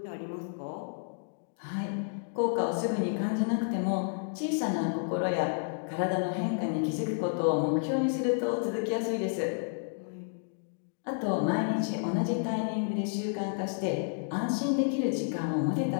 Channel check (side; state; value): right; silent; digital silence